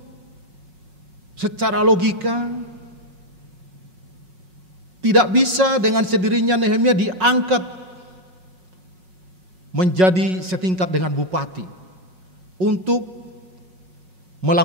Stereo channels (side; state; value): left; late; 5.4 ms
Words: secara logika tidak bisa dengan sendirinya Nehemia diangkat menjadi setingkat dengan bupati untuk